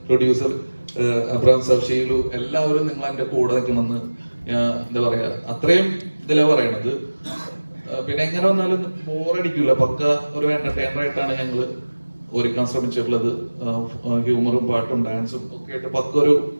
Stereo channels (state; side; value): inverted; both; correlation -1.00